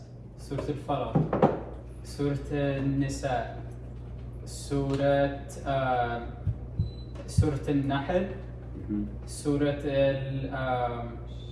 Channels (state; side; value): identical; both; correlation 1.00